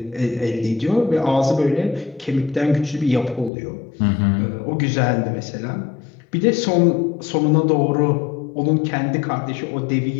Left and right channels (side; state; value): right; drops out; at 3.5 s